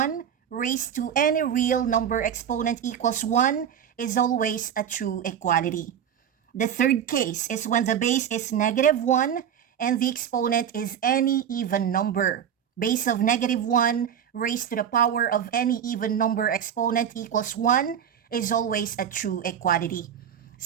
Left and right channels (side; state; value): left; quieter; 8.9 dB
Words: raised to any real number exponent equals 1 is always a true equality. The third case is when the base is negative 1 and the exponent is any even number. Base of negative 1 raised to the power of any even number exponent equals 1 is always a true equality.